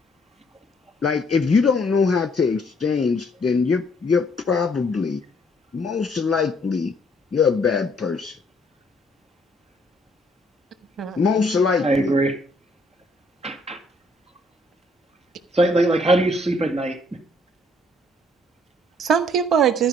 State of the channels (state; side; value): normal; both; correlation 0.65